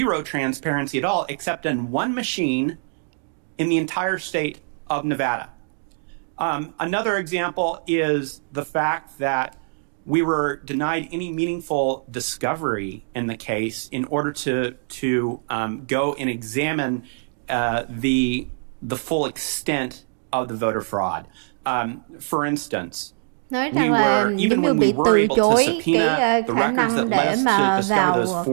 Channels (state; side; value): silent; left; digital silence